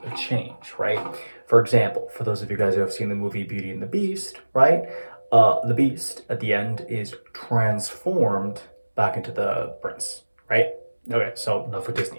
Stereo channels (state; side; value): inverted; both; correlation -1.00